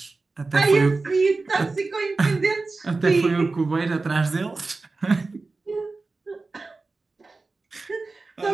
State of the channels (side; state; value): left; quieter; 3.7 dB